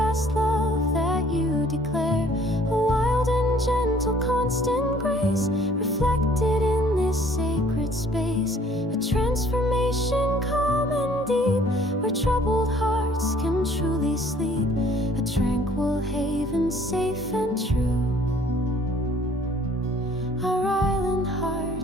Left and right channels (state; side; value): normal; both; correlation 0.58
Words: love that you declare, a wild and gentle, constant grace reflected in this sacred space, a transformation calm and deep, where troubled hearts can truly sleep, a tranquil haven safe and true. Our island